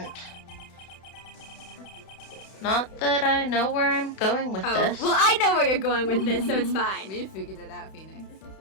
Not that I know where I'm going with this. Well, I know where you're going with this, so it's fine. We figured it out, Phoenix.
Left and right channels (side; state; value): right; late; 31 ms